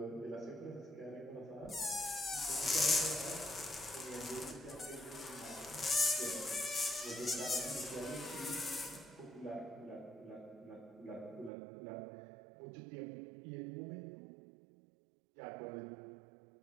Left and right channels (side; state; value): left; drops out; at 11.5 s